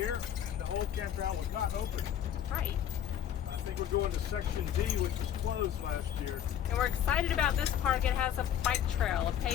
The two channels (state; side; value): quieter; right; 10.0 dB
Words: and the whole campground was not open. Right. I think we're going to Section D, which was closed last year. And we're excited about this park. It has a bike trail, a